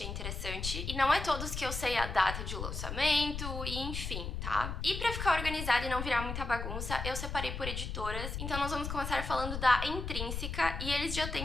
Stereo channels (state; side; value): noise; left; rumble, 5 dB below the sound